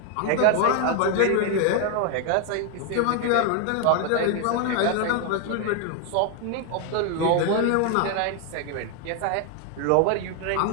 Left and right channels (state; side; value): different; both; correlation 0.01